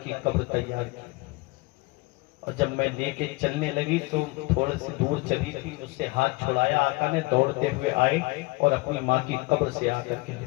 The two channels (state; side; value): quieter; right; 24.1 dB